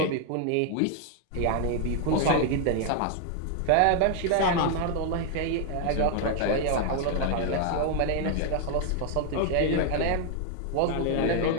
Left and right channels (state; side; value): different; both; correlation 0.01